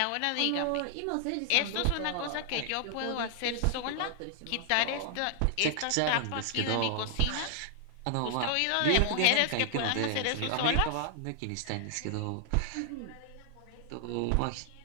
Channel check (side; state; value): both; different; correlation 0.00